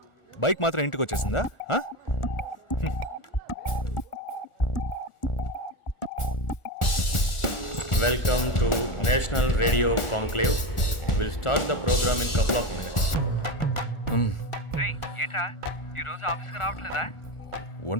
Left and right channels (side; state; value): right; late; 1.4 ms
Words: బైక్ మాత్రం ఇంటికి వచ్చేసిందా? ఆ? Welcome to national radio conclave. Will start the program in couple of minutes. ఏంట్రా ఈరోజు ఆఫీస్కి రావట్లేదా?